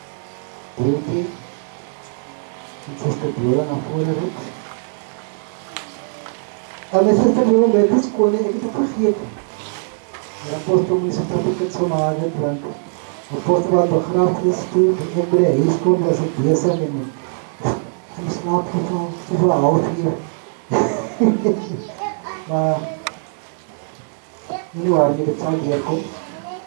Beauty. En Sister Biola naar voren roept. En met Sister Biola bij de school, ik heb het vergeten. De apostel moet zich dat ik het zo maken, want de apostel had begrafenis toen ik bij de huis kwam, was ik bezig en in slaap gevallen, zoveel half-uur. Maar nie waar nie, dit sal deurkom.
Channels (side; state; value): left; silent; digital silence